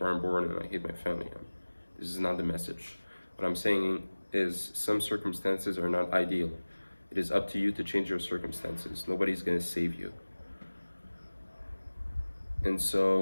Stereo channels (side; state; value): both; inverted; correlation -1.00